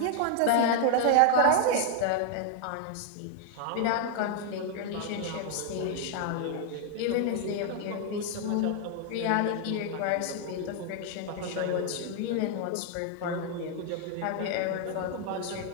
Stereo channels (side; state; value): both; different; correlation 0.00